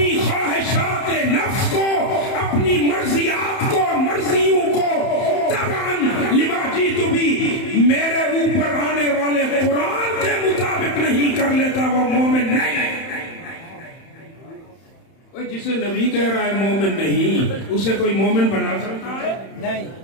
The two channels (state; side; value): late; right; 31 ms